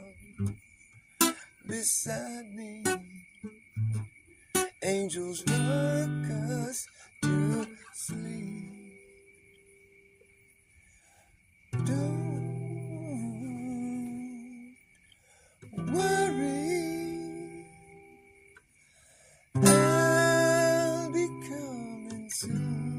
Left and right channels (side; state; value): both; identical; correlation 1.00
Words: beside me. Angels rock us to sleep. Don't worry, I'll be coming